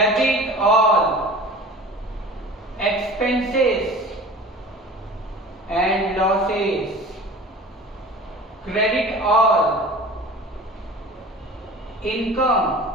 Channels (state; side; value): normal; both; correlation 0.40